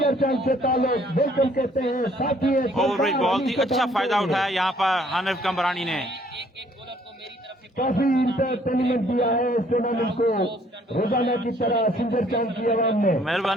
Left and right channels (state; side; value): normal; both; correlation 0.62